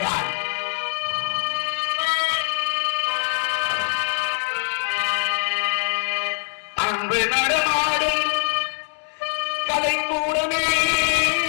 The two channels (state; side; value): silent; right; digital silence